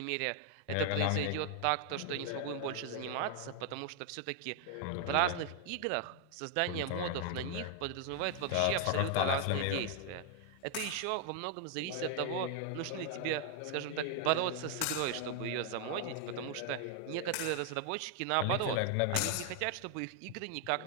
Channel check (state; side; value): different; both; correlation 0.00